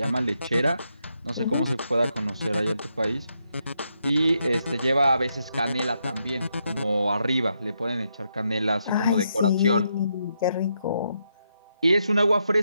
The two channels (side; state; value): both; inverted; correlation -0.80